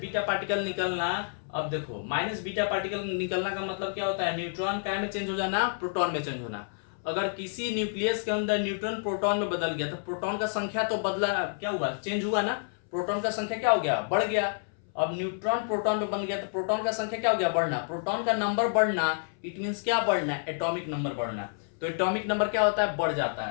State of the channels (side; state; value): right; silent; 59 dB below the other